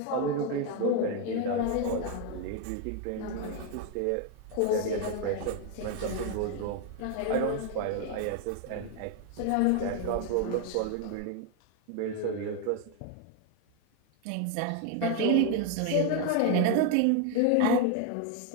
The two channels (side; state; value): both; different; correlation 0.01